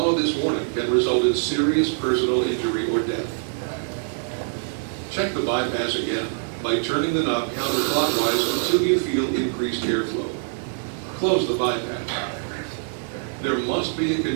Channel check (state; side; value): silent; left; digital silence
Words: this warning can result in serious personal injury or death. Check the bypass again by turning the knob counterclockwise until you feel increased airflow. Close the bypass. There must be a